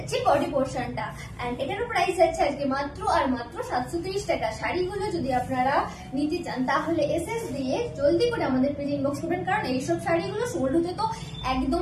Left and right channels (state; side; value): identical; both; correlation 1.00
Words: বডি পোর্শনটা, এন্ড এটারও প্রাইস যাচ্ছে আজকে মাত্র আর মাত্র 730 টাকা। শাড়িগুলো যদি আপনারা নিতে চান তাহলে এসএস দিয়ে জলদি করে আমাদের পেজে ইনবক্স করবেন, কারণ এইসব শাড়িগুলো সোল্ড হতে তো